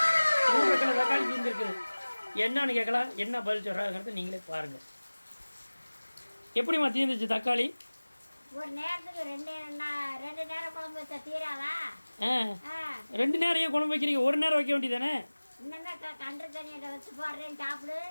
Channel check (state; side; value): inverted; both; correlation -1.00